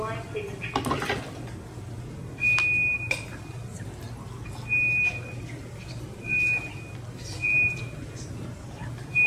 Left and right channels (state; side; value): identical; both; correlation 1.00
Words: please introduce yourself.